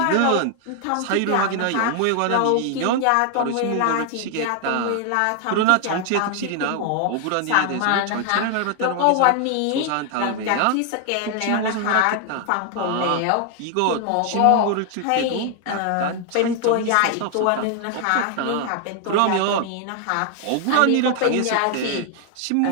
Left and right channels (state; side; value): different; both; correlation 0.00